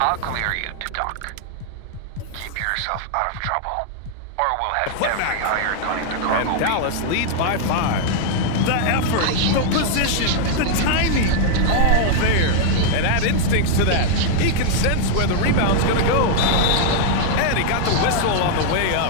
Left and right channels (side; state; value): both; different; correlation 0.00